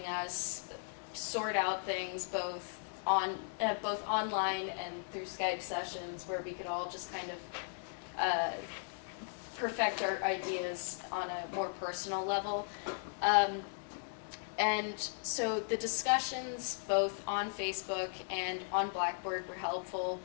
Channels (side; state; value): right; silent; digital silence